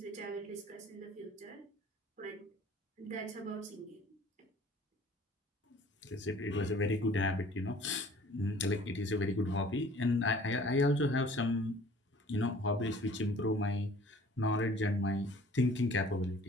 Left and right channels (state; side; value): normal; both; correlation 0.51